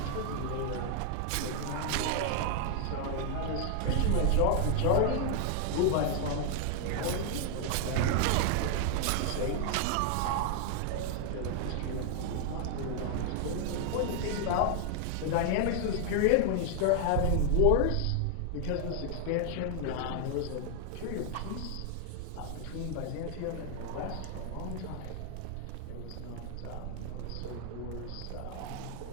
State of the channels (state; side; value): different; both; correlation 0.00